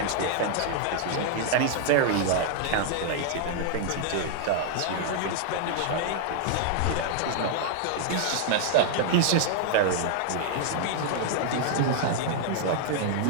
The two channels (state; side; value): different; both; correlation 0.00